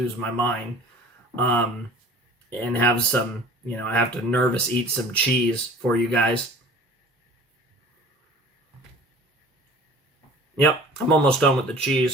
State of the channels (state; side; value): normal; both; correlation 0.44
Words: my mind, and have some, I have to nervous eat some cheese for you guys. Yep, I'm almost done with the